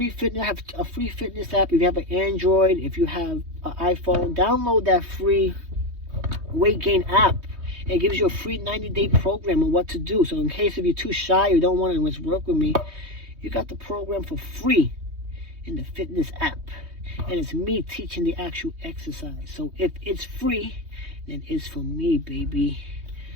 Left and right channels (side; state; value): left; late; 3.2 ms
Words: fitness app. If you have an Android, if you have an iPhone, download that free weight gain app. It gives you a free 90-day program on what to do. So in case if you're too shy or don't want to work with me, you got the program for free in the fitness app. And it's me teaching the actual exercise. So if it's free, then it's for me, baby.